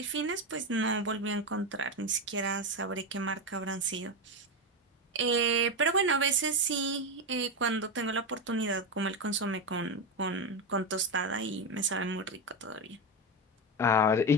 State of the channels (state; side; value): normal; both; correlation 0.13